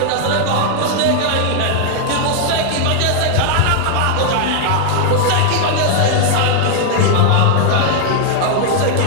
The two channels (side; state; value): both; different; correlation 0.00